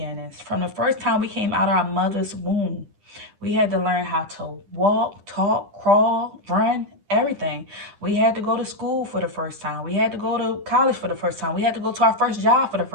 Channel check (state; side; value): late; left; 10 ms